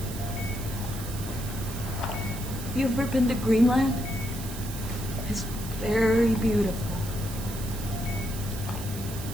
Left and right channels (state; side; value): noise; right; hiss, 11 dB below the sound